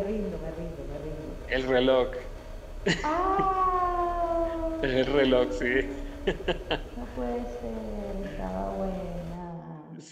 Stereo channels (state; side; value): identical; both; correlation 1.00